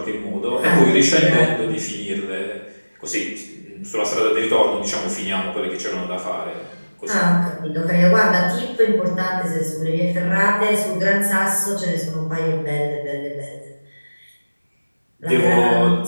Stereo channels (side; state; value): both; inverted; correlation -1.00